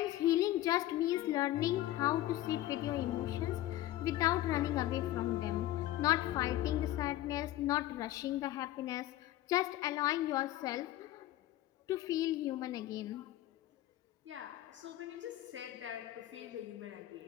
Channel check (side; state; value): right; quieter; 14.7 dB